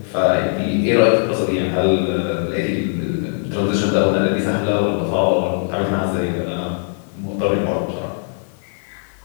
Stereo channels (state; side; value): silent; right; 60 dB below the other